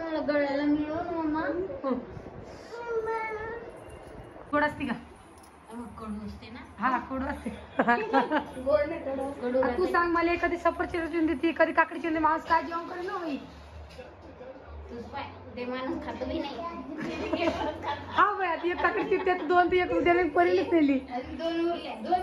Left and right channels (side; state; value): both; identical; correlation 1.00